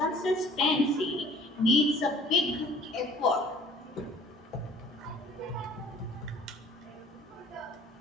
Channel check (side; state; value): both; normal; correlation 0.52